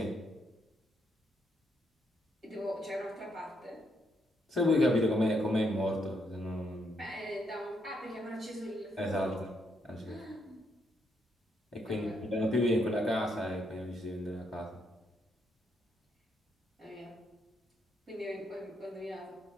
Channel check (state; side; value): normal; both; correlation 0.76